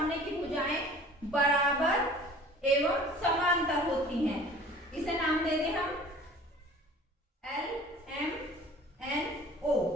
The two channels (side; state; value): both; normal; correlation 0.46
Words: की भुजाएं बराबर एवं समांतर होती हैं। इसे नाम दे दें हम LMNO।